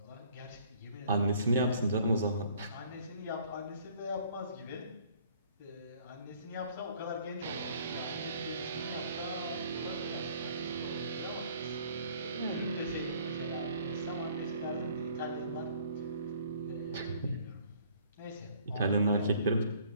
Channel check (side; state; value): both; inverted; correlation -0.57